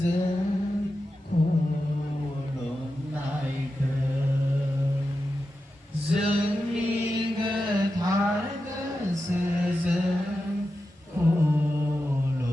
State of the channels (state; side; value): normal; both; correlation 0.91